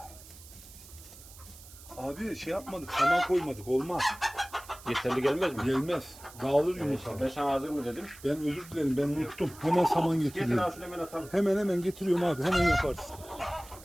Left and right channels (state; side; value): noise; right; hiss, 19 dB below the sound